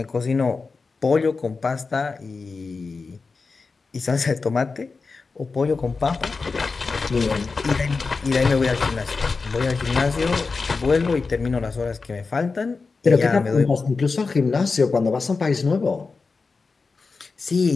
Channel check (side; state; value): right; quieter; 4.4 dB